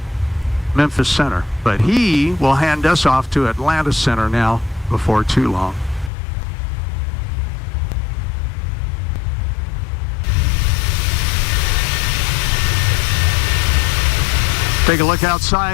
Memphis Center. But he will hand us off to Atlanta Center now before too long. Take a look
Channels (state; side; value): drops out; right; at 6.1 s